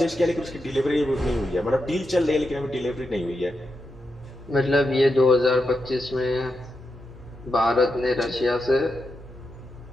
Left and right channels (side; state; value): both; normal; correlation 0.86